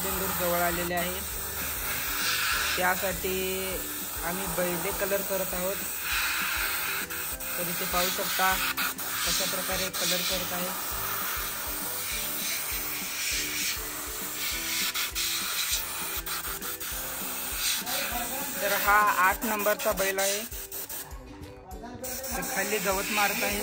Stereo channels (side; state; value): both; identical; correlation 1.00